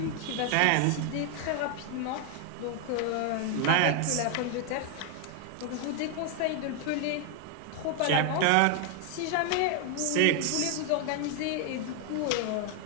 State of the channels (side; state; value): both; different; correlation 0.01